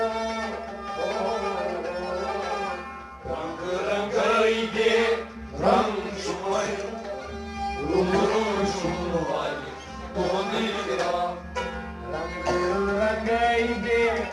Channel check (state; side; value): identical; both; correlation 1.00